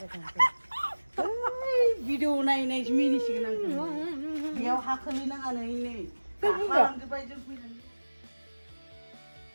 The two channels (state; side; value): inverted; both; correlation -1.00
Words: भिडिअ नायनायसो मिनिसिगोन आं बेयाव हाखोलै नाङा नै गाखोलांजोब्बाय जों फैनानै